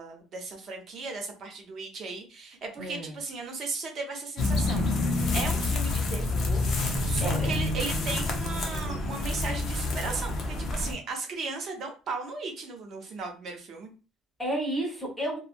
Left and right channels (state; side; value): normal; both; correlation 0.68